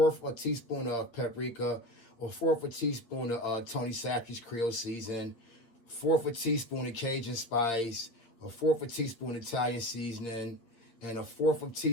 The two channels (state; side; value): late; right; 8.6 ms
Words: of a teaspoon of paprika, a fourth of a teaspoon of Tony Sackey's Creole season, fourth of a teaspoon of Cajun spice, a fourth of a teaspoon of Italian seasoning, and a fourth of a